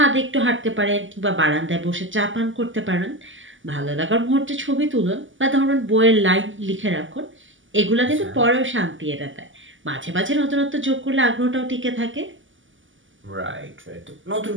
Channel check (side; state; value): left; late; 0.57 ms